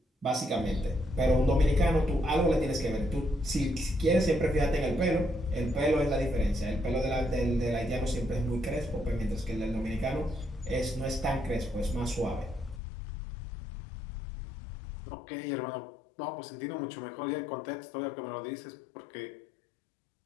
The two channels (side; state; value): right; drops out; at 12.8 s